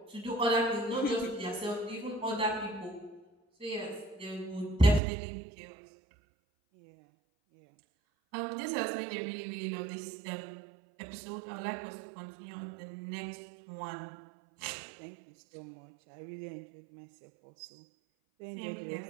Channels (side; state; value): left; drops out; at 5.0 s